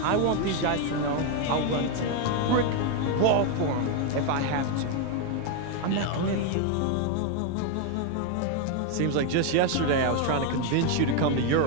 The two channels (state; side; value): different; both; correlation 0.01